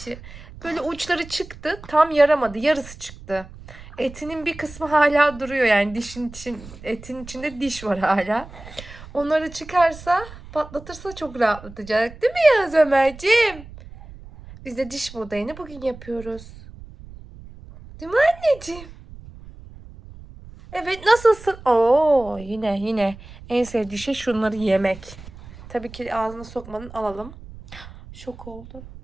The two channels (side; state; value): right; noise; rumble, 17 dB below the sound